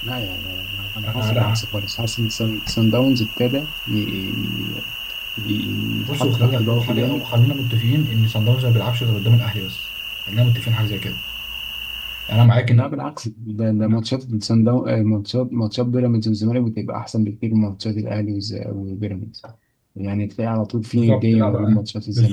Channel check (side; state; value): both; identical; correlation 1.00